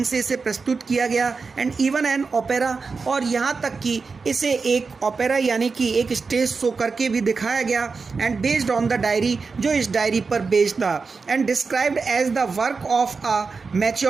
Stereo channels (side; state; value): left; quieter; 4.7 dB